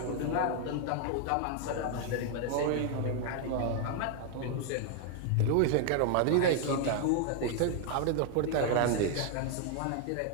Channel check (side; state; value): both; different; correlation 0.00